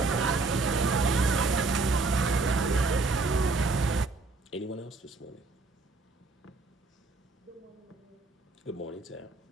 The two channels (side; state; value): left; quieter; 3.7 dB